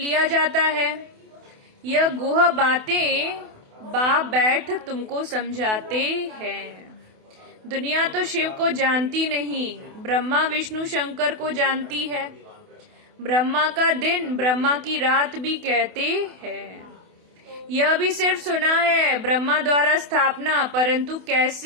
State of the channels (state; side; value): late; left; 28 ms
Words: जाता है। यह गुह बातें बाप बैठ तुमको समझाते हैं। दुनिया तो शिव को जानती नहीं, ब्रह्मा विष्णु शंकर को जानती है। ब्रह्मा का दिन ब्रह्मा की रात भी कहते हैं। यह भी सिर्फ सुना है ब्रह्मा द्वारा स्थापना, परंतु